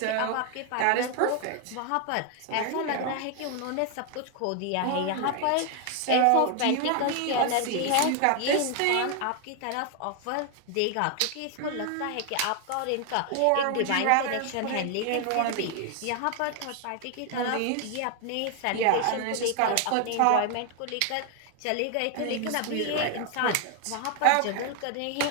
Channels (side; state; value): both; different; correlation 0.00